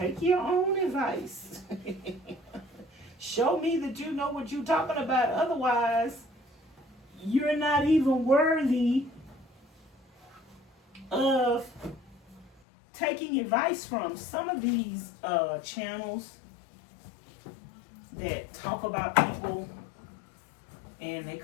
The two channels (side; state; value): right; drops out; at 12.5 s